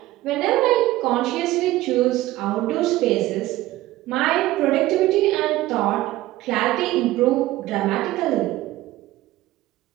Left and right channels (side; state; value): left; quieter; 16.5 dB